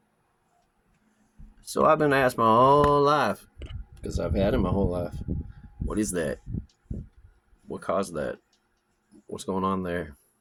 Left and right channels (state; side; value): identical; both; correlation 1.00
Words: so I've been asked my whole life, because I've had it my whole life. What is that? What caused that? What's going on there?